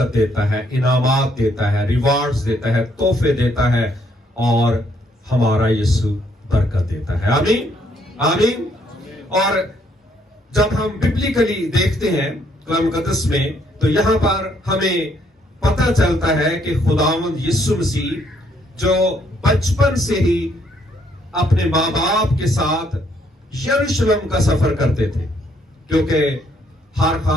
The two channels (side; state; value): both; normal; correlation 0.69